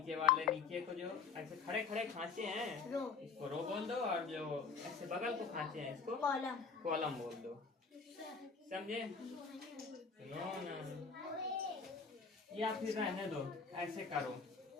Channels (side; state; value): right; quieter; 5.3 dB